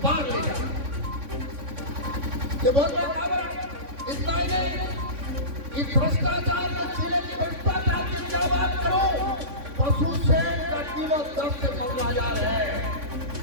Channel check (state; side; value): late; left; 3.6 ms